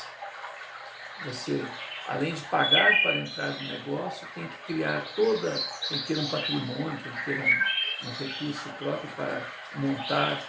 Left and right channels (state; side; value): identical; both; correlation 1.00